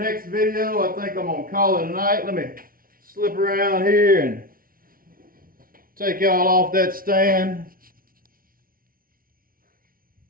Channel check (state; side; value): late; left; 0.42 ms